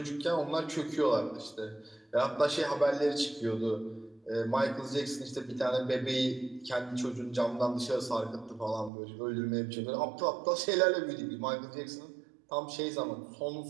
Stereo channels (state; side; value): drops out; left; at 8.9 s